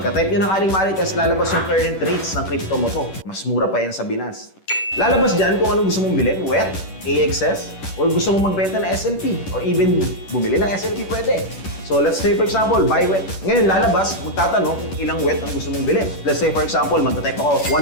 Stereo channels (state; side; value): late; right; 10 ms